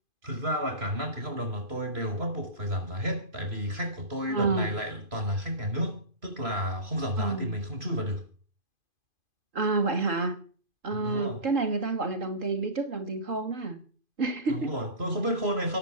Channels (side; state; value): left; late; 2.5 ms